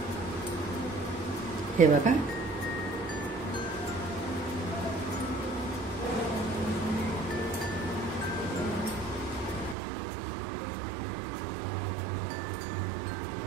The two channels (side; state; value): left; drops out; at 9.8 s